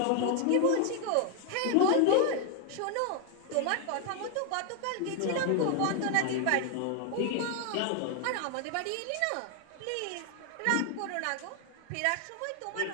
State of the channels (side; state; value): both; different; correlation 0.00